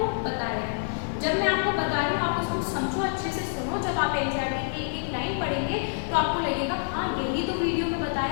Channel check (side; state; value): right; silent; digital silence